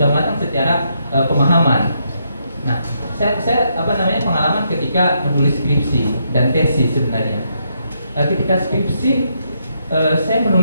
matang secara pemahaman. Nah, saya pengalaman ketika menulis skripsi dan tesis sebenarnya. Ketika skripsi, saya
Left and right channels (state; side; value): inverted; both; correlation -0.77